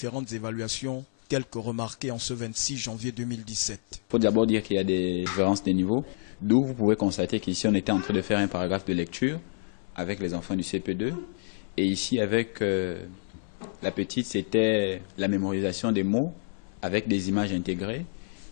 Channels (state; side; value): silent; right; 59 dB below the other